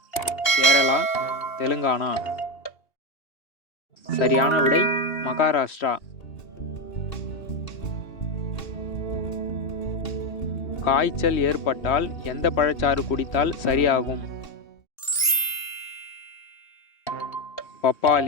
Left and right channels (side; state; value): right; late; 2.8 ms